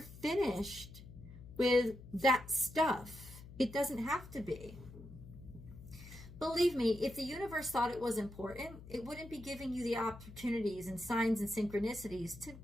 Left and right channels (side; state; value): left; noise; hum, 16 dB below the sound